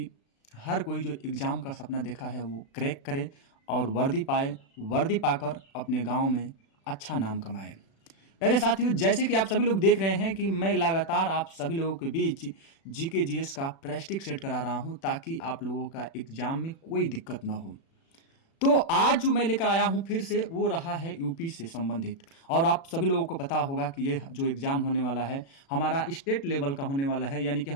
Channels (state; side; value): late; right; 36 ms